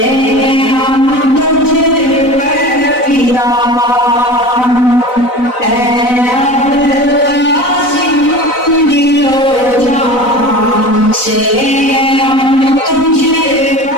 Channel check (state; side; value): late; right; 4.0 ms